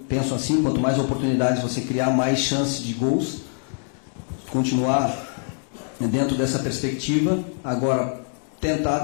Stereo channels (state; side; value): silent; right; 56 dB below the other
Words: penso assim, quanto mais oportunidades você criar, mais chances de gols. Continuar dentro dessa perspectiva, agora tentar